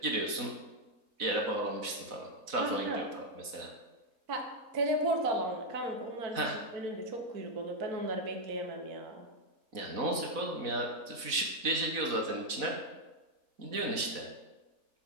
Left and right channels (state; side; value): late; left; 4.0 ms